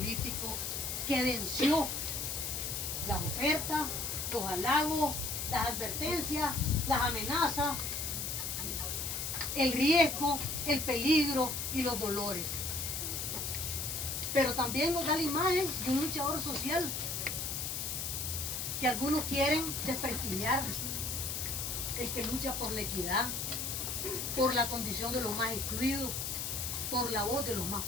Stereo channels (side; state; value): left; noise; hiss, 3 dB below the sound